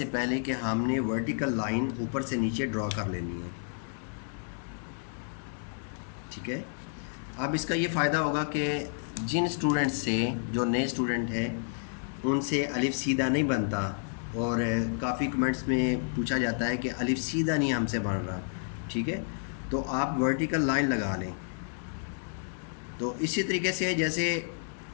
पहले कि हमने वर्टिकल लाइन ऊपर से नीचे ड्रा कर लेनी है, ठीक है। अब इसका ये फ़ायदा होगा कि जिन स्टूडेंट्स से जो नए स्टूडेंट हैं उनसे अलिफ़ सीधा नहीं बनता, और काफ़ी कमेंट्स में पूछा जाता है कि अलिफ़ सीधा नहीं हमसे बन रहा, ठीक है। तो आप वर्टिकल लाइन लगा लें। तो इसी तरीके से जैसे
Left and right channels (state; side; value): silent; right; 57 dB below the other